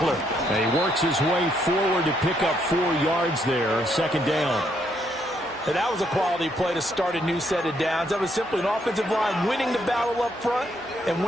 And he works his way forward to pick up 4 yards there. 2nd down. And that was a quality play to start a new set of downs. That was simply an offensive line winning the battle up front and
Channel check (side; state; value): both; normal; correlation 0.73